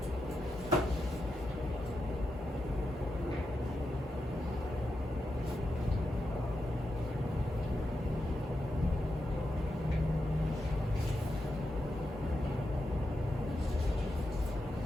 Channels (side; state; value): both; normal; correlation 0.87